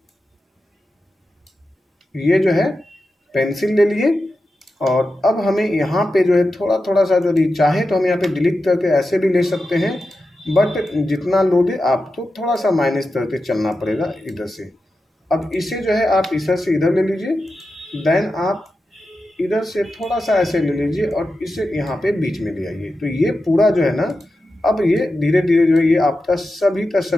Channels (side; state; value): both; normal; correlation 0.91